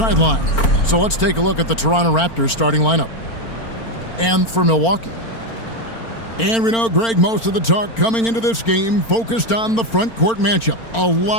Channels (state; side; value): late; right; 4.4 ms